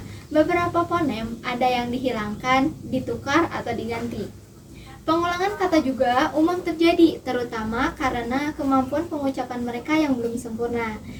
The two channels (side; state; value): both; identical; correlation 1.00